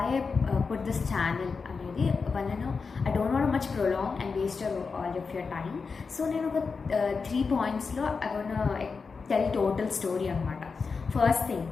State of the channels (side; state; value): right; quieter; 4.9 dB